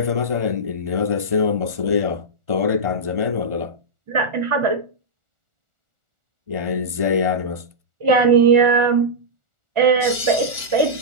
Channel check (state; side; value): late; left; 1.4 ms